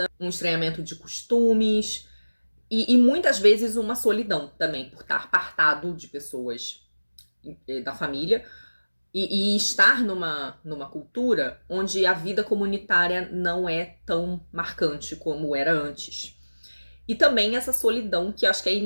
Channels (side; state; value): both; inverted; correlation -1.00